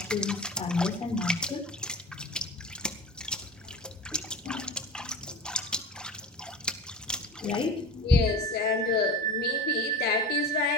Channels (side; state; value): both; normal; correlation 0.33